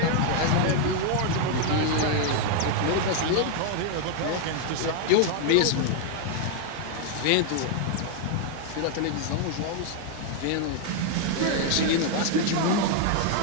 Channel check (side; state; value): both; different; correlation 0.00